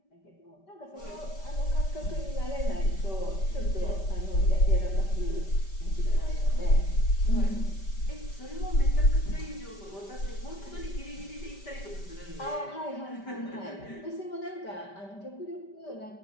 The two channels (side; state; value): right; late; 5.1 ms